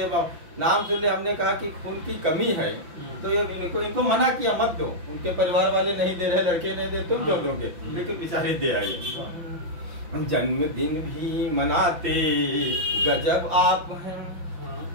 नाम सुनने हमने कहा कि खून की कमी है, तो इनको मना किया मत दो। उनके परिवार वाले नहीं दे रहे, लड़के नहीं दे, तुम क्यों दोगे, लेकिन बेचारे दे आए। जन्मदिन भी मनाते गजब आप हैं।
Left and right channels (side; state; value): left; late; 5.8 ms